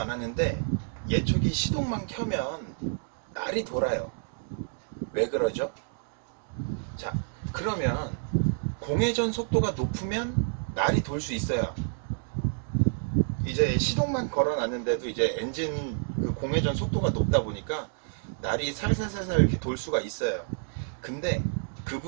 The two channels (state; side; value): silent; left; digital silence